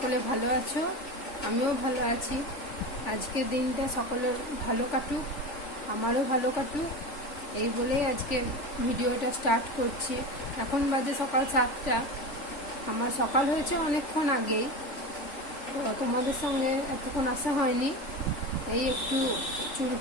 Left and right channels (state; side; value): late; right; 3.4 ms